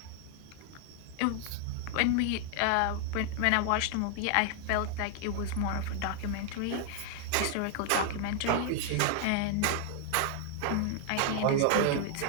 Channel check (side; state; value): both; different; correlation 0.00